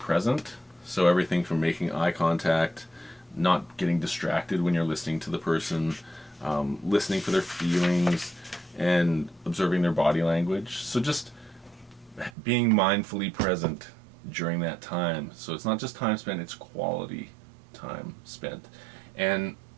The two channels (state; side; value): drops out; left; at 12.4 s